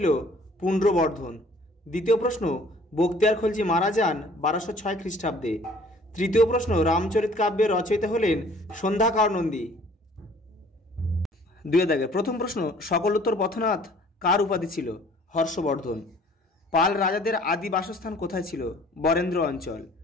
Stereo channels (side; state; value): both; normal; correlation 0.54